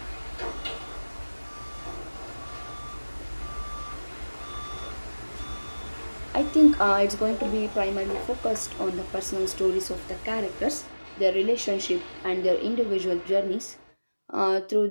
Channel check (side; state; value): both; inverted; correlation -1.00